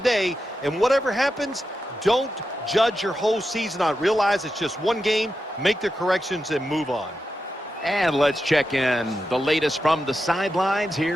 And whatever happens, don't judge your whole season on it. Realize it's just one game, make the corrections, and move on. And let's check in the latest from the sidelines.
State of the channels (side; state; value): both; normal; correlation 0.88